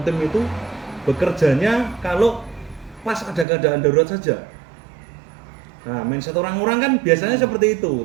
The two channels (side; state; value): left; drops out; at 3.5 s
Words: Team itu bekerjanya kalau pas ada keadaan darurat saja. Nah, mindset orang-orang kan biasanya seperti